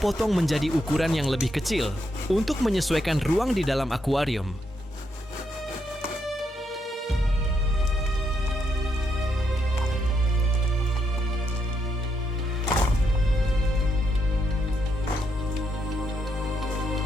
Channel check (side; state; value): both; normal; correlation 0.79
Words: menjadi ukuran yang lebih kecil untuk menyesuaikan ruang di dalam akuarium.